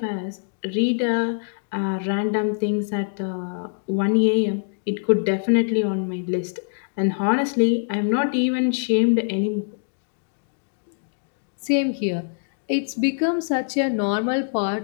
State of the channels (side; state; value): right; silent; digital silence